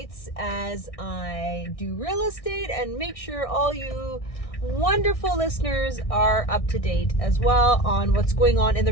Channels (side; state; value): right; late; 1.6 ms